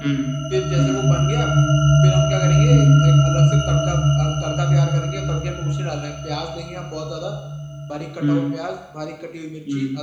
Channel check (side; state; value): both; identical; correlation 1.00